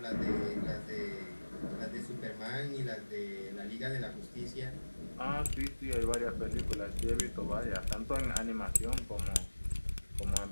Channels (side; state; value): both; inverted; correlation -1.00